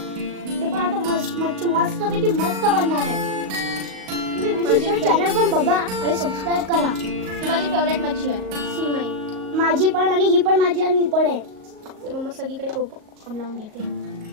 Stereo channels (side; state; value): left; late; 38 ms